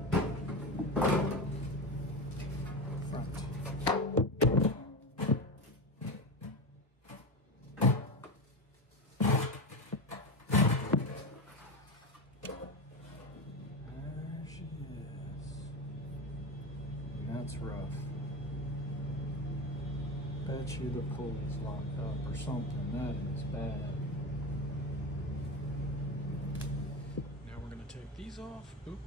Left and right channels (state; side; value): normal; both; correlation 0.21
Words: Front. There she is. And that's rough. Bet you the pulley's locked up or something. That is bad. Now we're gonna take these off. Boop,